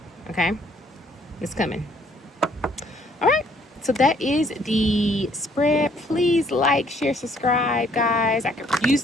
Okay? It's coming. All right. So that is the spread. Please like, share, subscribe, guys. I could use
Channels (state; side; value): normal; both; correlation 0.64